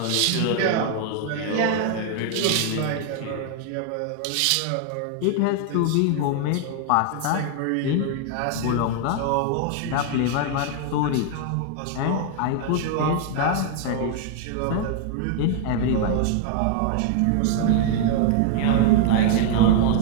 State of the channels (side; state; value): both; different; correlation 0.00